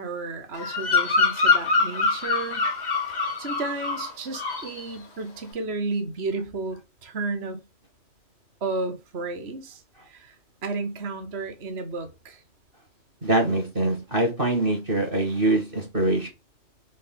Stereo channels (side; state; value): left; late; 3.0 ms